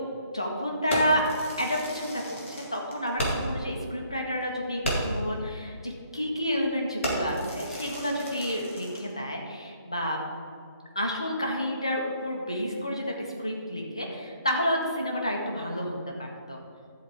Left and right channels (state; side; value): inverted; both; correlation -0.65